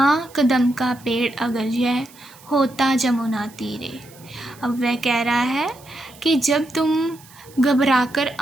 कदम का पेड़ अगर यह होता जमुना तीरे। अब वह कह रहा है कि जब तुम घबराकर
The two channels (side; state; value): right; noise; hiss, 24 dB below the sound